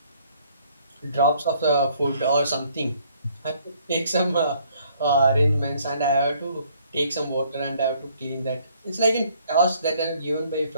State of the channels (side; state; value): both; inverted; correlation -0.63